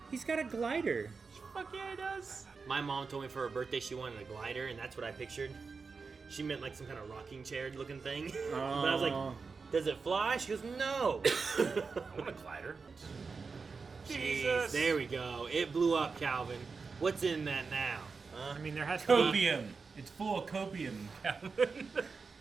He's got a glider. Fuck yeah, he does. My mom told me for her birthday she wanted a glider, and that's what I pictured. She meant like some kind of rocking chair looking thing. But I was like, does it fly? She goes, no. I want a glider. Jeez, there we go. It blew up, Calvin. What's in that now? I mean, there has to be, Copium. It's full of copium, Calvin. there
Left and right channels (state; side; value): quieter; left; 4.8 dB